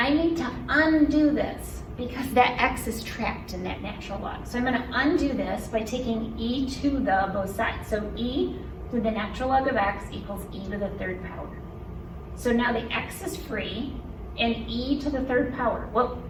need to undo this because that x is trapped in that natural log. So I'm going to undo this by taking e to the both sides. So e to the natural log of x equals e to the third power. So now the x is free, and e to the third power. Well,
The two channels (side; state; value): both; identical; correlation 1.00